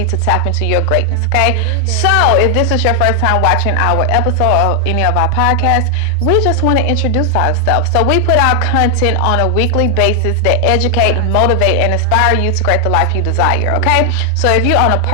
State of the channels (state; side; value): different; both; correlation 0.00